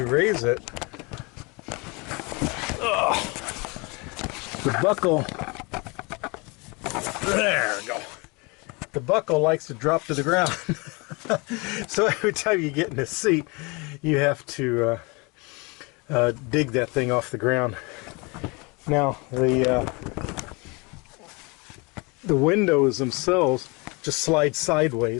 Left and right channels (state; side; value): quieter; right; 28.4 dB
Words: raise it. The buckle, there we go. The buckle likes to drop to the ground. So every time you get in the seat, you have to dig that thing off the ground. Now the windows themselves just slide